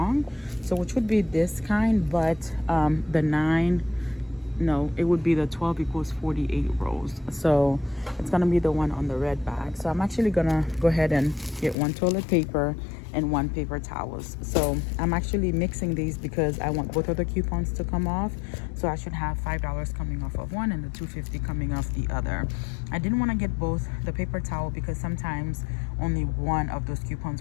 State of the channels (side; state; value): right; drops out; at 11.8 s